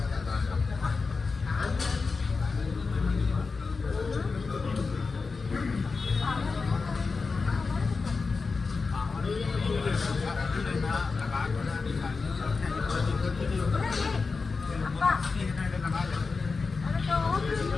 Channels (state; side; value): quieter; right; 4.4 dB